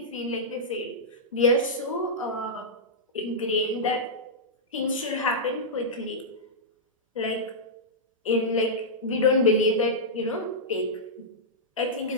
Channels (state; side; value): normal; both; correlation -0.11